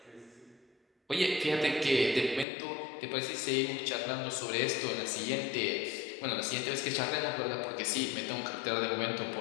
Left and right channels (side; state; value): right; drops out; at 2.5 s